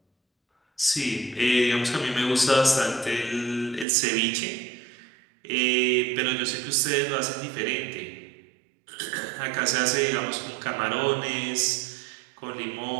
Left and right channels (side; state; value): left; drops out; at 3.9 s